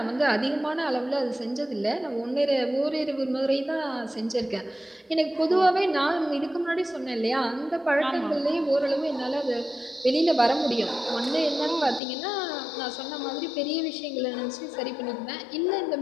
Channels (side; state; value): right; drops out; at 12.0 s